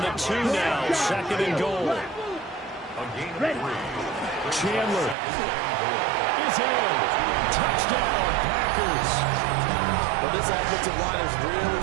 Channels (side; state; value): left; drops out; at 5.2 s